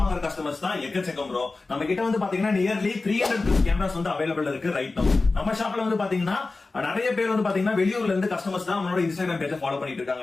கஸ்டமர்ஸ் தான் எக்கச்சக்கம் ப்ரோ. நம்ம கிட்ட வந்து பாத்தீங்கன்னா நியர்லி 300 கேமராஸ் வந்து அவைலபிள் இருக்கு ரைட் நவ. நம்ம ஷாப்ல வந்து பாத்தீங்கன்னா நிறைய பேர் வந்து பாத்தீங்கன்னா வெளியூர்ல இருந்து கஸ்டமர்ஸ் தான் நம்மளோட இன்ஸ்டாகிராம் பேஜை ஃபாலோ பண்ணிட்டு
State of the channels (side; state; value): right; quieter; 3.6 dB